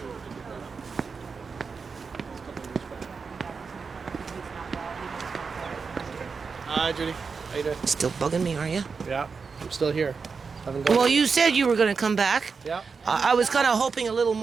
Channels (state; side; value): quieter; left; 5.1 dB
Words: Hi, Judy. How you doing? Still bugging me, are you? Yeah, I'm still here. Haven't gone. Well, you said you were going to come back. Yeah. I was kind of hoping a little